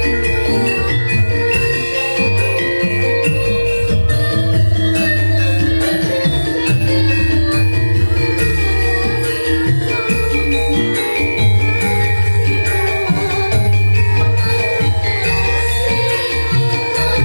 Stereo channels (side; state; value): both; inverted; correlation -1.00